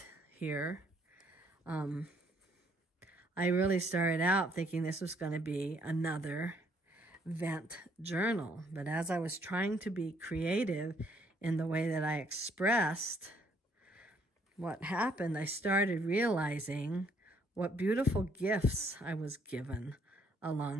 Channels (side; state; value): both; normal; correlation 0.67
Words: here. I really started out thinking this was going to be another vent journal. But as I was trying to be creative in the way that I expressed what happened, I started realizing what beautiful gifts I was given